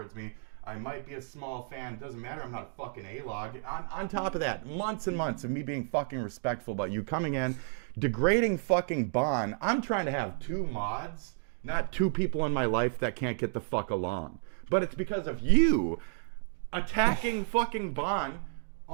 me. I might be a small fan. Doesn't matter. I'm not a fucking A-log. On top of that, months and months of me being fucking respectful about you coming in, degrading fucking Bon. I'm trying to have 2 mods, not 2 people in my life that can't get the fuck along. But it's because of you attacking fucking Bon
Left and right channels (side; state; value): left; silent; digital silence